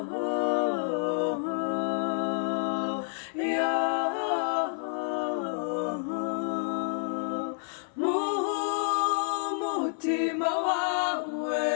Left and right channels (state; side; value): silent; right; 58 dB below the other